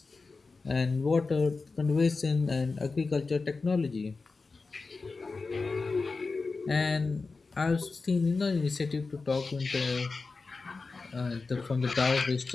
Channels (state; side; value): quieter; right; 4.1 dB